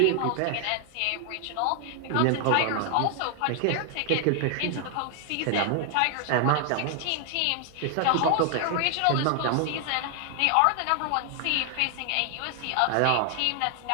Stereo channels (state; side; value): different; both; correlation 0.00